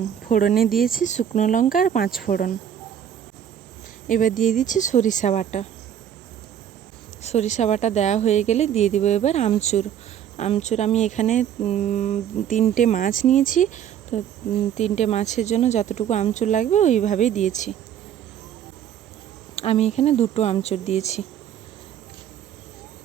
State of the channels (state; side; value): quieter; left; 9.6 dB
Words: ফোড়নে দিয়েছি শুকনো লঙ্কা আর 5 ফোড়ন। এবার দিয়ে দিচ্ছি সরিষা বাটা। সরিষা বাটা দেওয়া হয়ে গেলে দিয়ে দিব এবার আমচুর। আমচুর আমি এখানে 3টে মাছ নিয়েছি, তো 3টে মাছের জন্য যতটুকু আমচুর লাগবে ওইভাবেই দিয়েছি। আমি এখানে 2টো আমচুর দিয়েছি।